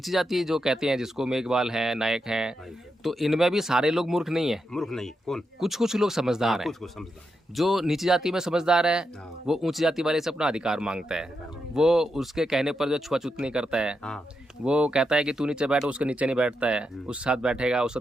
जाति जो कहते हैं, जिसको मेघवाल है, नायक हैं, तो इनमें भी सारे लोग मूर्ख नहीं है। मूर्ख नहीं कौन, कुछ कुछ लोग समझदार हैं। कुछ कुछ समझदार है। जो नीची जाति में समझदार है हाँ। वो ऊंची जाति वाले से अपना अधिकार मांगता है। वो उसके कहने पर जो छुआछूत नहीं करता है। हाँ वो कहता है कि तू नीचे बैठ, उसके नीचे नहीं बैठता है, उसके साथ बैठेगा, उसके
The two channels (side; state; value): both; normal; correlation 0.85